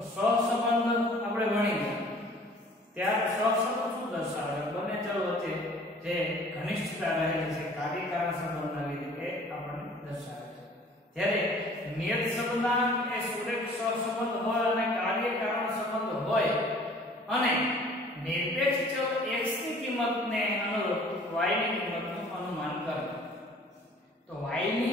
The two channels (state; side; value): normal; both; correlation 0.51